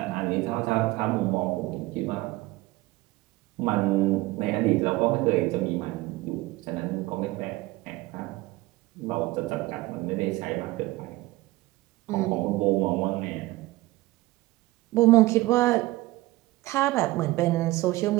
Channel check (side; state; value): left; quieter; 19.5 dB